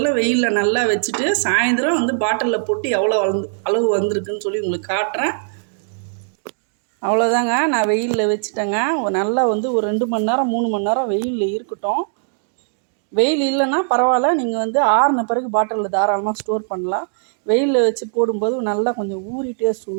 வெயிலில் நல்லா வச்சுட்டு சாயந்தரம் வந்து பாட்டிலில் போட்டு எவ்வளோ அளவு வந்திருக்குன்னு சொல்லி உங்களுக்கு காட்டுறேன். அவ்வளோதாங்க. நான் வெயிலில் வச்சுட்டேங்க. நல்லா வந்து ஒரு 2 மணி நேரம் 3 மணி நேரம் வெயிலில் இருக்கட்டும். வெயில் இல்லைன்னா பரவாயில்ல, நீங்கள் வந்து ஆறின பிறகு பாட்டிலில் தாராளமாக ஸ்டோர் பண்ணலாம். வெயிலில் வச்சு போடும்போது நல்லா கொஞ்சம் ஊறி டேஸ்ட்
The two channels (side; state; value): left; silent; digital silence